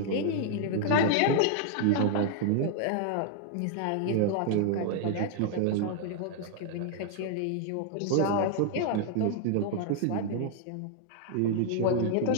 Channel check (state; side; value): different; both; correlation 0.00